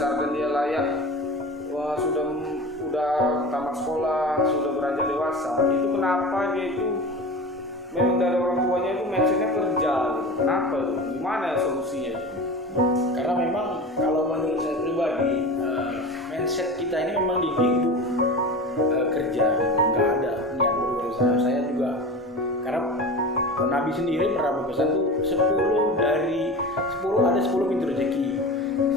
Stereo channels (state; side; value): normal; both; correlation 0.32